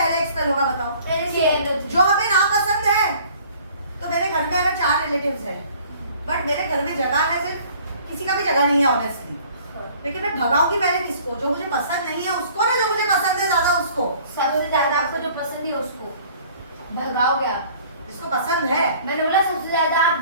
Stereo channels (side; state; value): both; inverted; correlation -0.53